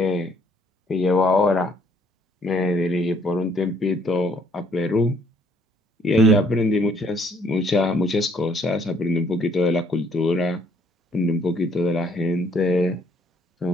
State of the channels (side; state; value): both; normal; correlation 0.65